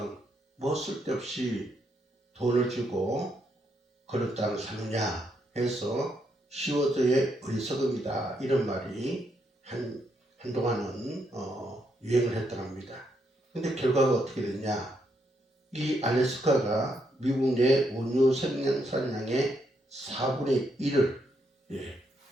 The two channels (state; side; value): normal; both; correlation 0.77